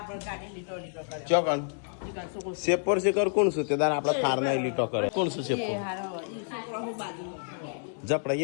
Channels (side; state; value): right; silent; 58 dB below the other